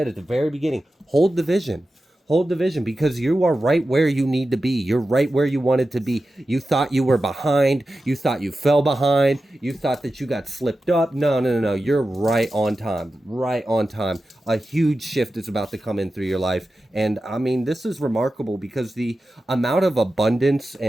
at the very beginning, hold the vision. Hold the vision because you are right where you need to be. You're right where you wanted to be. You thought you were behind. You thought you fell behind. You thought that you got slipped up. No. You're right on time. Right on time. A huge shift is about to come in through your life. And I mean, this is remarkable because the amount of abundance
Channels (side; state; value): both; normal; correlation 0.93